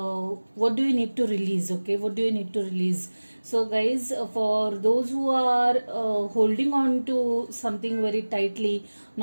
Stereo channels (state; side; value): inverted; both; correlation -1.00